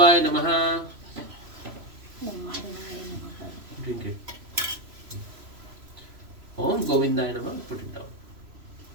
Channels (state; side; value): late; left; 3.0 ms